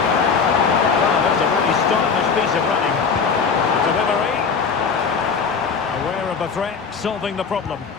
Well, that's a really stylish piece of running. Delivery. Aware of the threat, solving the problem.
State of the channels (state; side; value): quieter; right; 5.6 dB